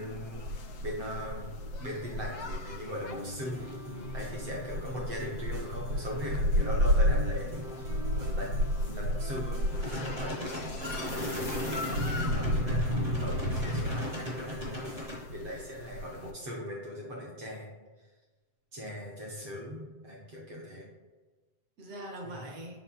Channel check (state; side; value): late; left; 7.8 ms